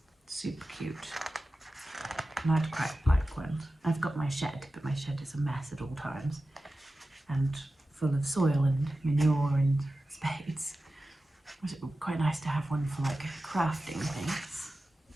super cute. And I'd quite like one. I've got my shed, but my shed is a mess at all times and full of soil and manure and spades. It would be quite nice to have one for like crafting things.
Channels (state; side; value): normal; both; correlation 0.94